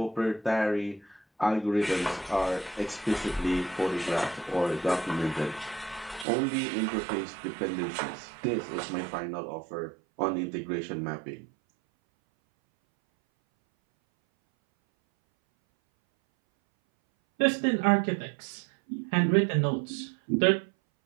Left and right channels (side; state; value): left; drops out; at 6.2 s